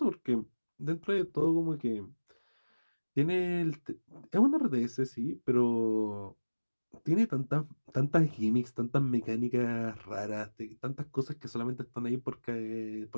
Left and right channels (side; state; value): both; inverted; correlation -1.00